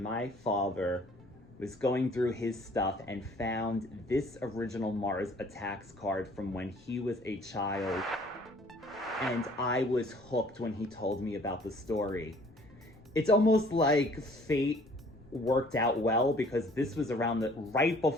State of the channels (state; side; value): noise; left; rumble, 26 dB below the sound